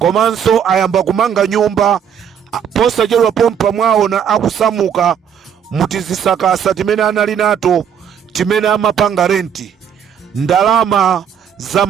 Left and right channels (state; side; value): quieter; left; 8.2 dB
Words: ayamba kumanga nyumba posachedwa pompa mwawo na akusamuka mutizisakasa timene anali nato timene amapanga renti. Ndalama za